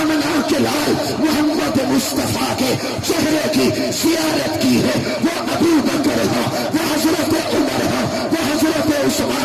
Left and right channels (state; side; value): identical; both; correlation 1.00